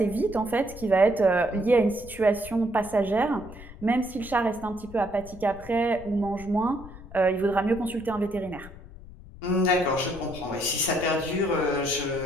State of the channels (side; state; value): left; noise; rumble, 16 dB below the sound